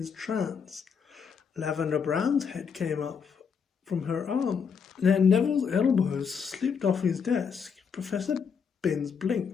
trance. Lavender Brown's head came up from her arm. Then Neville's elbows slipped off his desk. Professor Binns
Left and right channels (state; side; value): quieter; right; 6.4 dB